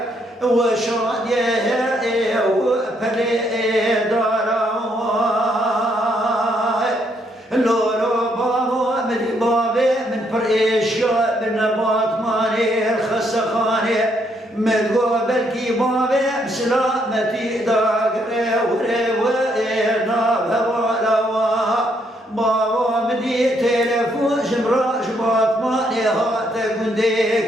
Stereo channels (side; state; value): both; normal; correlation 0.73